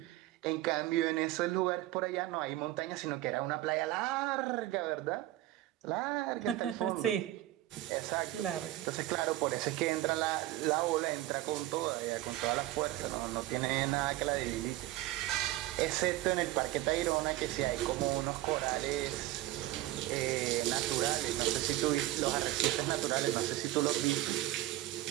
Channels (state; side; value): quieter; left; 16.0 dB